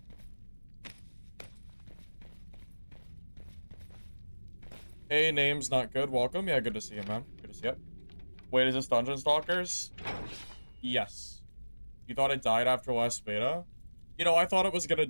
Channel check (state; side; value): inverted; both; correlation -1.00